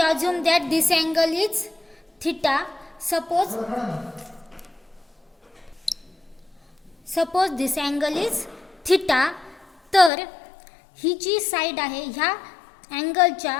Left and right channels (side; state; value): right; drops out; at 10.1 s